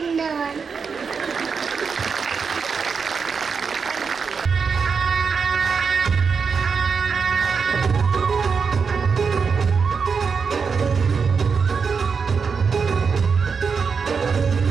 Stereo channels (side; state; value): left; quieter; 5.6 dB